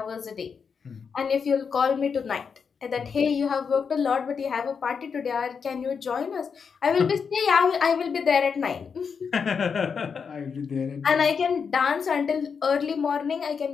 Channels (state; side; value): quieter; right; 6.1 dB